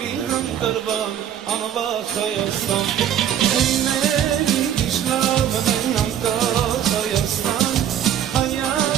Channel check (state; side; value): quieter; left; 10.1 dB